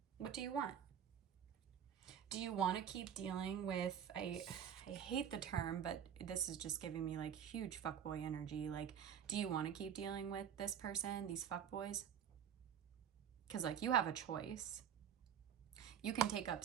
What do you want? Do you want to keep dealing with, I hate the term, but this is just giving me like huge fuckboy energy. Like, do you want to keep dealing with this person, these fuckboys? Because like you have a choice. You can take up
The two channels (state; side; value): quieter; left; 8.6 dB